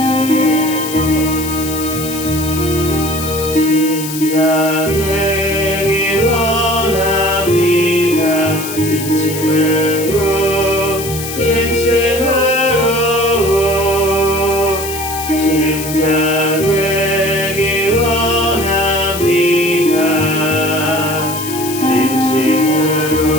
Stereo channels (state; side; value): noise; left; hiss, 9 dB below the sound